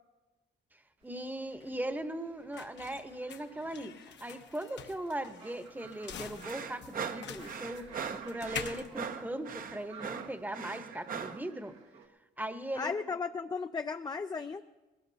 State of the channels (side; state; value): both; normal; correlation 0.62